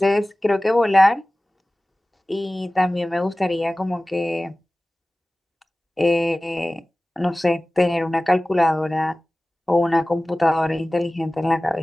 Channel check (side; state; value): both; normal; correlation 0.97